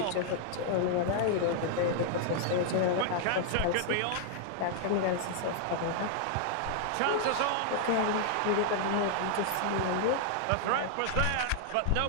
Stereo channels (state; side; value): different; both; correlation 0.00